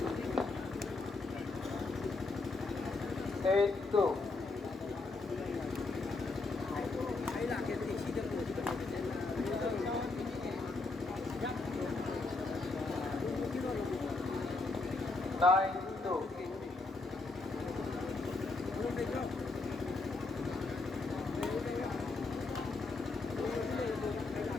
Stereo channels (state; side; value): quieter; right; 3.5 dB